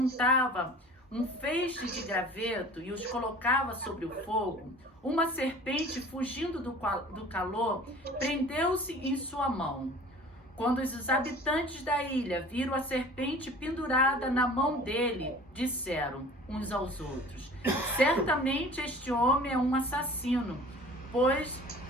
um feixe de graveto e os colocava sobre o fogo, uma serpente, fugindo do calor, prendeu-se em sua mão. Quando os habitantes da ilha viram a serpente pendurada na mão dele, disseram uns aos outros: Certamente este homem é um assassino, pois,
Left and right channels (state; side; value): normal; both; correlation 0.44